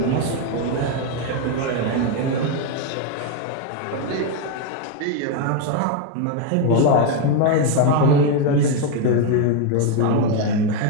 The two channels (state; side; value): different; both; correlation 0.01